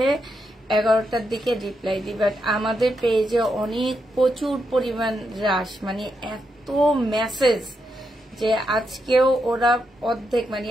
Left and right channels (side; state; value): both; normal; correlation 0.83